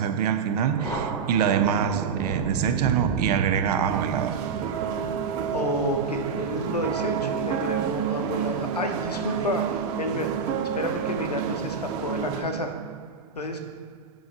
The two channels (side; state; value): left; quieter; 5.4 dB